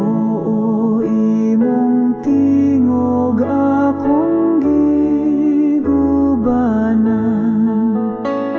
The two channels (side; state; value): both; identical; correlation 1.00